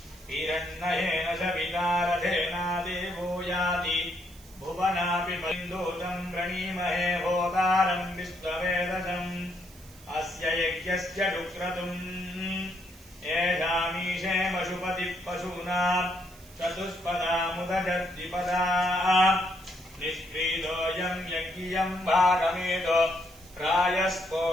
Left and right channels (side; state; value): right; noise; hiss, 23 dB below the sound